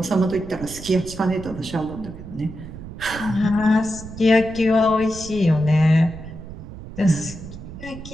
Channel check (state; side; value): noise; right; rumble, 13 dB below the sound